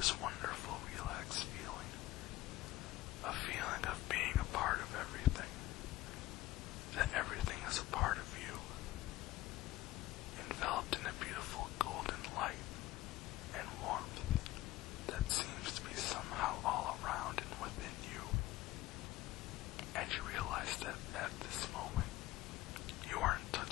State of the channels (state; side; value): quieter; right; 16.8 dB